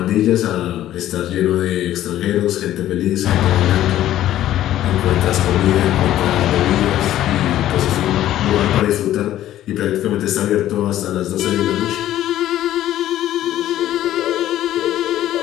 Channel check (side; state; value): right; quieter; 13.0 dB